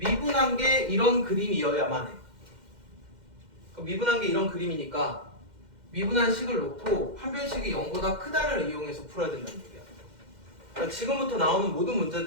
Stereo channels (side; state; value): left; late; 2.1 ms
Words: 게 이런 그림이어야만 해. 미분한 게 이런 그림이니까 미분한 식을 놓고 판별식이 0보다 크다를 이용해서 풀어야 된다는 얘기야. 그러니까 지금부터 나오는 모든